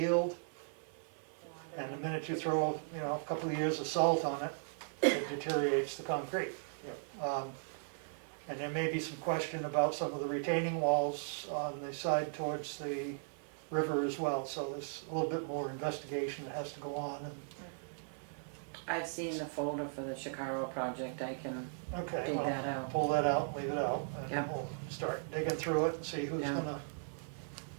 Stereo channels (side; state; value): left; silent; 53 dB below the other